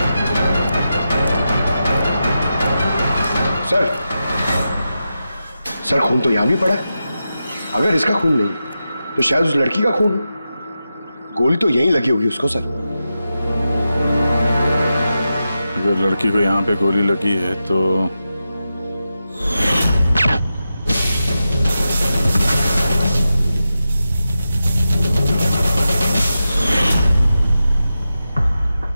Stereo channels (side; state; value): both; inverted; correlation -0.90